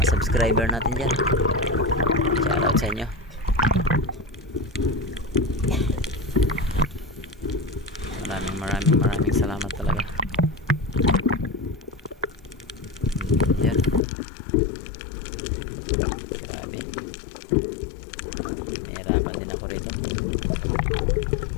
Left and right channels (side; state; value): right; drops out; at 14.0 s